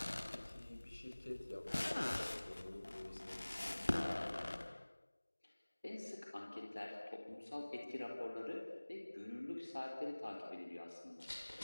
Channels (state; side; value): inverted; both; correlation -1.00